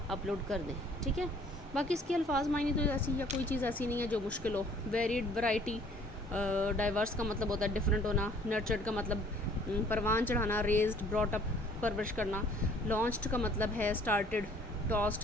اپلوڈ کر دیں. ٹھیک ہے، باقی اس کے الفاظ معنی تو ایسی یا کوئی چیز ایسی نہیں ہے جو مشکل ہو. ویریڈ، ورائٹی، ڈائیورس کا مطلب ہوتا ہے ڈفرینٹ ہونا. نرچرڈ کا مطلب پروان چڑھانا، ریزڈ، براٹ اپ، پرورش کرنا. لانچڈ کا مطلب ہے اسٹارٹڈ،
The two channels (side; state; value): both; normal; correlation 0.57